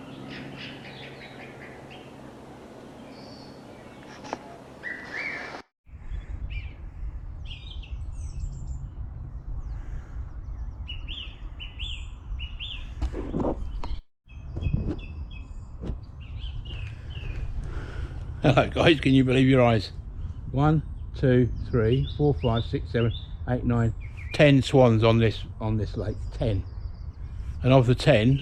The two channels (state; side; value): identical; both; correlation 1.00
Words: Hello guys, can you believe your eyes? 1, 2, 3, 4, 5, 6, 7, 8, 9, 10 swans on this lake. 10. And of the 10,